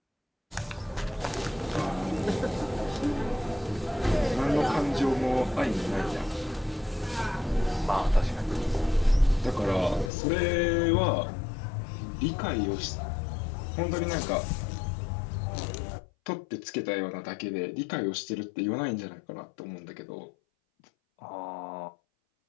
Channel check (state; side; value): drops out; right; at 10.1 s